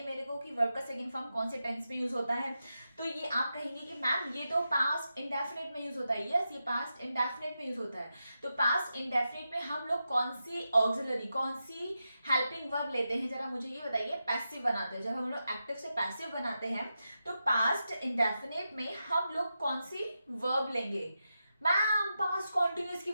मेरे को कि वर्ब का सेकंड फॉर्म कौन से टेंस में यूज होता है? तो ये आप कहेंगे कि मैम ये तो पास्ट इंडेफिनिट में यूज होता है। यस, ये पास्ट इंडेफिनिट में यूज होता है। तो पास्ट इंडेफिनिट में हम लोग कौन सी ऑक्सिलरी, कौन सी हेल्पिंग वर्ब लेते हैं? जरा मुझे ये बताइए। पैसिव बनाते हैं, जब हम लोग एक्टिव से पैसिव बनाते हैं तो पास्ट इंडेफिनिट में हम लोग कौन सी वर्ब लेंगे? मैम पास्ट कॉन्टिन्यूस की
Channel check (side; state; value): both; inverted; correlation -0.89